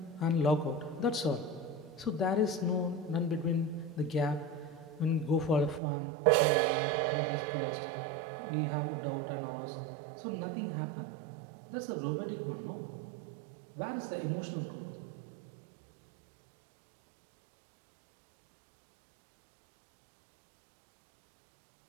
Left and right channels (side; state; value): left; drops out; at 5.8 s